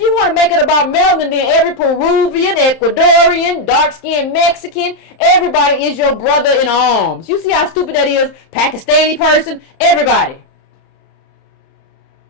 want to make it about melanin, then every Peruvian, Ecuadorian, dark-skinned Mexican, everybody is your brother in arms. You see how stupid that is? Pakistani person, everybody.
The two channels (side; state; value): right; late; 30 ms